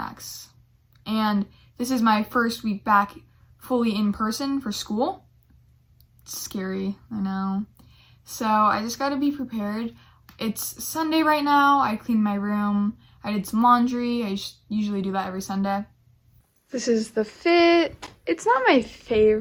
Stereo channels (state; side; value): identical; both; correlation 1.00